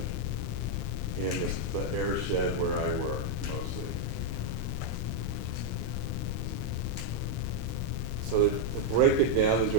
in this So to break it down into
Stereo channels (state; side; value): normal; both; correlation 0.00